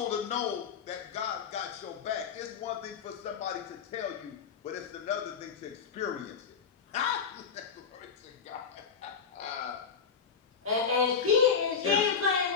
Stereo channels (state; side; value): quieter; right; 6.4 dB